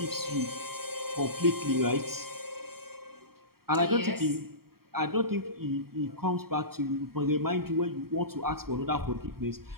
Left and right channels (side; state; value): left; late; 0.94 ms